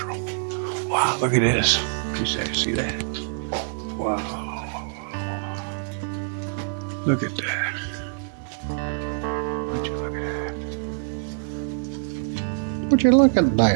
Wow, look at this. You see that? Wow. Look at that. Would you look at that? Would you look at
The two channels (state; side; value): silent; left; 61 dB below the other